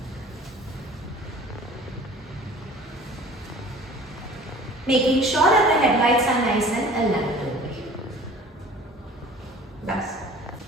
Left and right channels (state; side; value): normal; both; correlation 0.46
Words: Making sure that the headlights are nice and aligned over here. That's